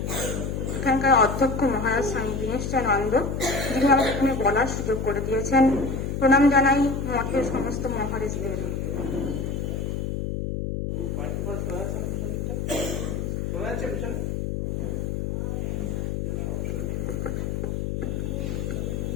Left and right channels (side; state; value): left; noise; hum, 2 dB below the sound